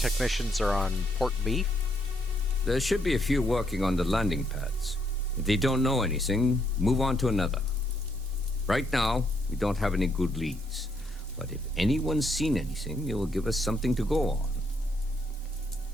are on Port B? There should be a few working on the landing pads. If they don't know anything, move on to another. Right now, we don't have any good leads. But if anyone's seen anything, it will give us something to go on.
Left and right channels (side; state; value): both; normal; correlation 0.74